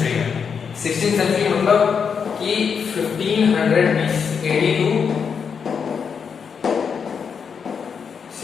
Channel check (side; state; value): right; quieter; 6.4 dB